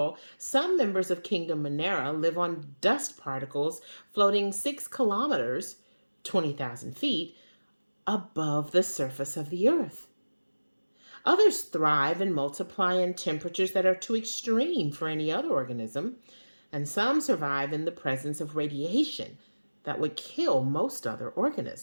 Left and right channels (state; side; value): inverted; both; correlation -1.00